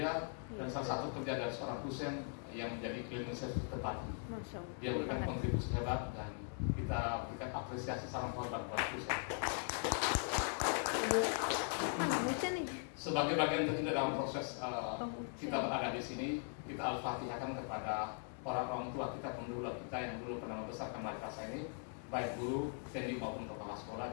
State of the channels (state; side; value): silent; right; 51 dB below the other